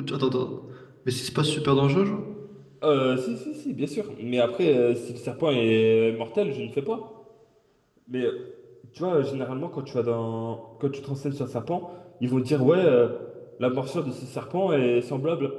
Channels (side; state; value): both; identical; correlation 1.00